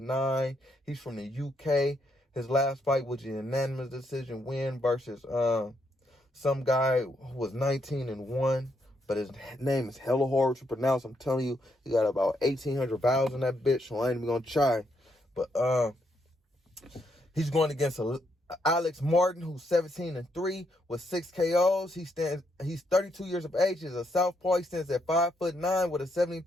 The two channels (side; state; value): both; normal; correlation 0.77